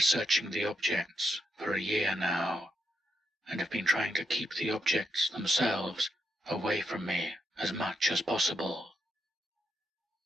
the objects for a year now, and have been trying to keep the objects themselves away from me as much as possible.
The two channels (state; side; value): normal; both; correlation 0.81